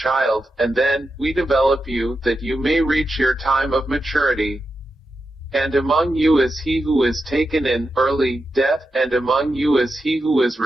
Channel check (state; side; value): normal; both; correlation 0.88